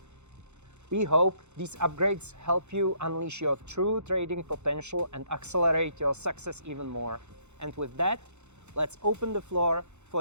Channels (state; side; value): late; left; 0.82 ms